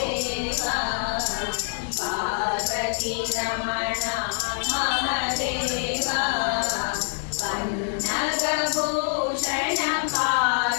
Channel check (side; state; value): right; silent; digital silence